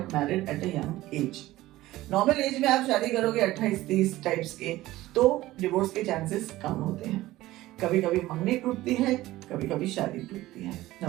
married at a young age. Normal age में आप शादी करोगे 28-30 टाइप्स के तो डिवोर्स के चांसेस कम होते हैं। कभी कभी मंगनी टूटती है, कभी कभी शादी टूटती है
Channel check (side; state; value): left; quieter; 16.8 dB